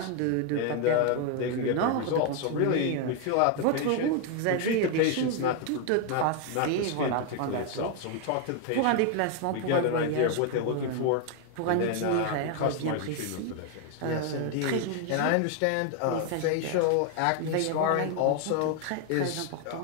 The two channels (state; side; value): different; both; correlation 0.01